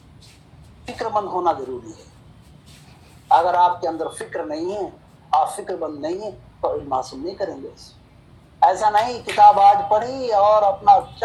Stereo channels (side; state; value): both; identical; correlation 1.00